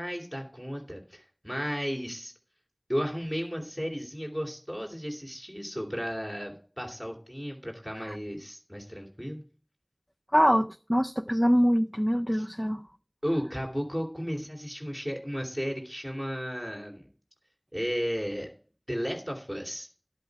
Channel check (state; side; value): identical; both; correlation 1.00